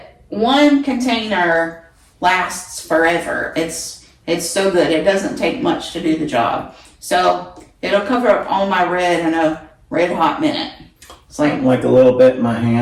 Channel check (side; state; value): both; identical; correlation 1.00